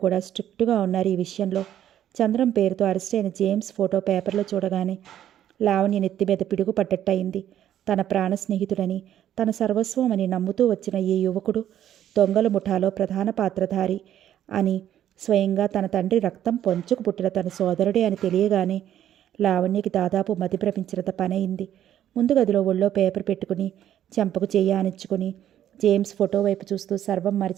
కూడా స్ట్రిక్ట్గా ఉన్నారు. ఈ విషయంలో చంద్రం పేరుతో అరెస్ట్ అయిన జేమ్స్ ఫోటో పేపర్లో చూడగానే లావణ్య నెత్తి మీద పిడుగు పడ్డట్టయింది. తన ప్రాణ స్నేహితుడని, తన సర్వస్వం అని నమ్ముతూ వచ్చిన ఈ యువకుడు దొంగల ముఠాలో ప్రధాన పాత్రధారి అని, స్వయంగా తన తండ్రి రక్తం పొంచుకు పుట్టిన తన సోదరుడే అని తెలియగానే లావణ్యకి దాదాపు మతిభ్రమించినంత పనయింది. ముందు గదిలో ఒళ్ళో పేపర్ పెట్టుకుని చెంపకు చెయ్యి ఆనించుకుని జేమ్స్ ఫోటో వైపు చూస్తూ సర్వం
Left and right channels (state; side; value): quieter; left; 11.1 dB